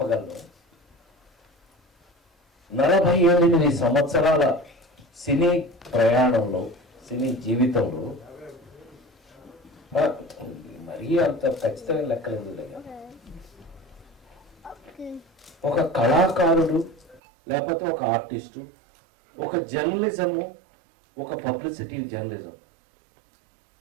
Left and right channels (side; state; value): left; drops out; at 17.2 s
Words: 48 సంవత్సరాల సినీ ప్రయాణంలో, సినీ జీవితంలో మరీ అంత ఖచ్చితమైన లెక్కలేదు. ఒక కళాకారుడు లేకపోతే ఒక ఆర్టిస్టు, ఒక జర్నలిజము, ఒక పబ్లిసిటీ జర్నలిజం